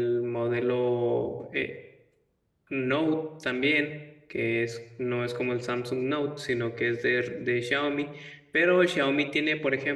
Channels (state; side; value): identical; both; correlation 1.00